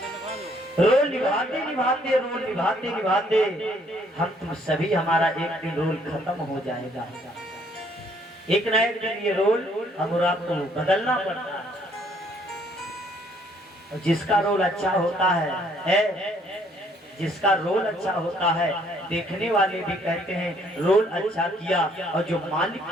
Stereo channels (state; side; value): normal; both; correlation 0.65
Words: रोल निभाते निभाते हम तुम सभी हमारा एक दिन रोल खत्म हो जाएगा। एक न एक दिन ये रोल हम और आपको बदलना पड़ता है। जिसका रोल अच्छा होता है जिसका रोल अच्छा होता है देखने वाले भी कहते हैं रोल अच्छा किया और जो मालिक